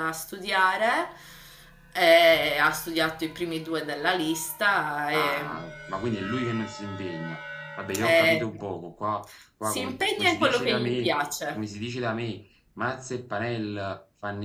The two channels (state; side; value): identical; both; correlation 1.00